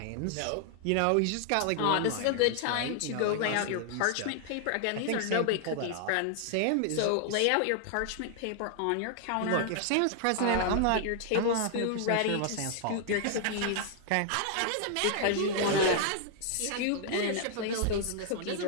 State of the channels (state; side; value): different; both; correlation 0.00